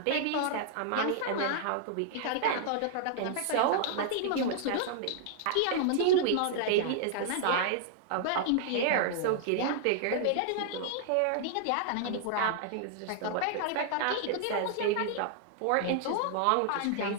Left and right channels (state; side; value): different; both; correlation -0.01